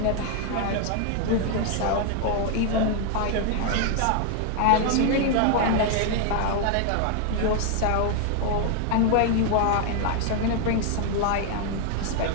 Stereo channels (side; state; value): both; different; correlation 0.00